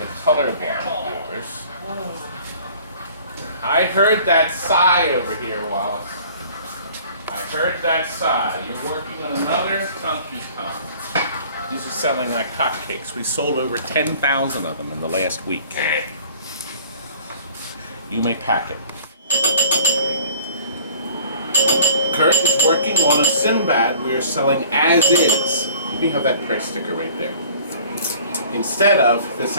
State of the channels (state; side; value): inverted; both; correlation -0.50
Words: colorblind viewers. I heard that sigh over here, Wallace. I heard that sigh. You're working on another Donkey Kong. These are selling like hotcakes. We sold over 10,000 of them in the last week. You may pack it. Curt is working on a Sinbad we are selling as is. We have that price sticker right there. Instead of this